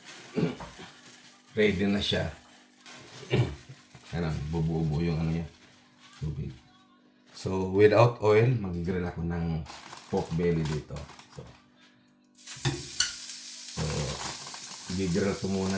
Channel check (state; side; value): identical; both; correlation 1.00